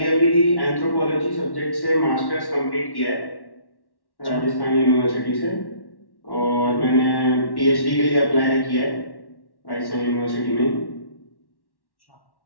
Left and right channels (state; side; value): late; right; 1.1 ms